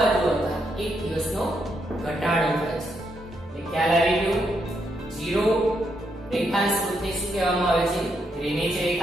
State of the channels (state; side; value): normal; both; correlation 0.78